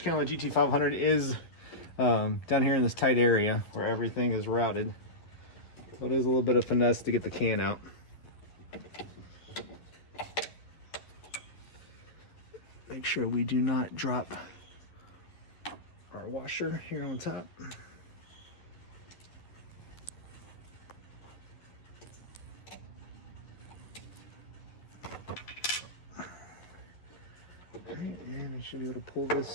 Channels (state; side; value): late; right; 11 ms